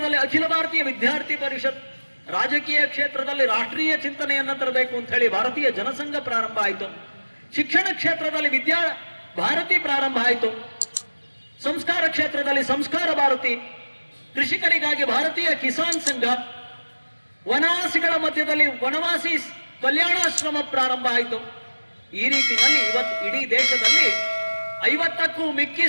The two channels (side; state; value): both; inverted; correlation -1.00